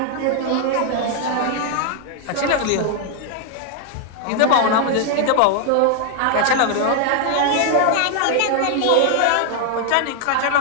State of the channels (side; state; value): both; different; correlation 0.00